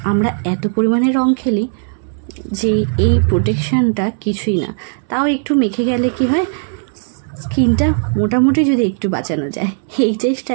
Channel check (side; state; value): left; silent; 68 dB below the other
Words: আমরা এত পরিমাণে রং খেলি যে এই প্রোটেকশনটা কিছুই না। তাও একটু মেখে গেলে কি হয়, স্কিনটা মোটামুটি যদি একটু বাঁচানো যায়, এই